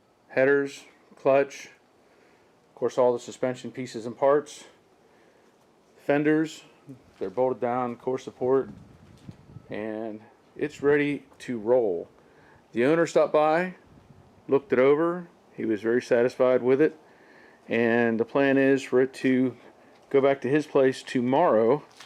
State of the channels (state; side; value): identical; both; correlation 1.00